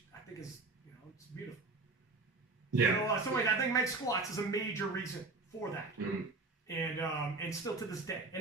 I think is, it's beautiful. Yeah. So I think Meg Squats is a major reason for that. Mm-hmm. And still to this day.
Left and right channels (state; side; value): quieter; left; 3.7 dB